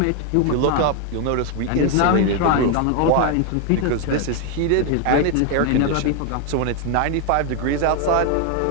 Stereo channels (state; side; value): different; both; correlation 0.01